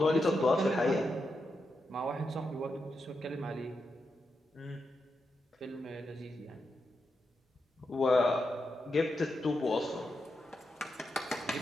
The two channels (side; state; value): both; normal; correlation 0.86